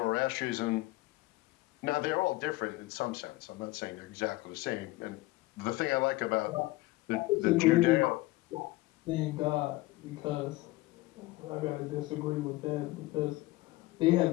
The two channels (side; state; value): right; quieter; 20.0 dB